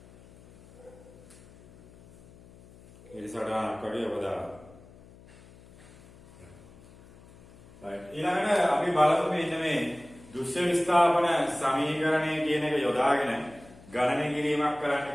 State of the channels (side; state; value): left; noise; hum, 23 dB below the sound